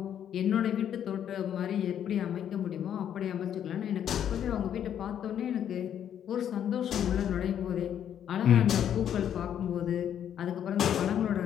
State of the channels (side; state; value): right; quieter; 9.6 dB